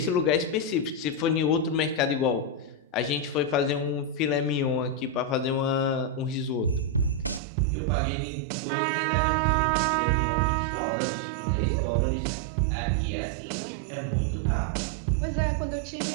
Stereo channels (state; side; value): drops out; left; at 7.4 s